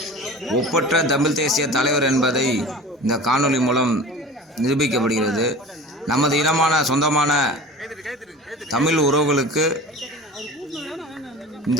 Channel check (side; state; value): both; normal; correlation 0.38